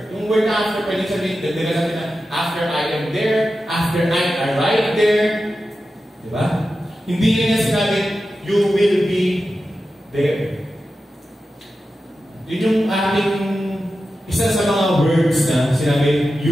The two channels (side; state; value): both; normal; correlation 0.92